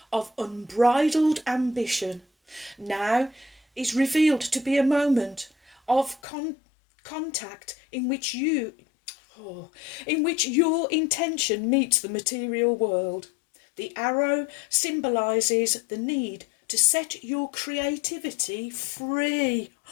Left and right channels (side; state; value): right; drops out; at 6.2 s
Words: of unbridled ambition. Now is revealed to be a moment of contact in which your intention meets the material world. The arrow symbolises the need to set your creativity free.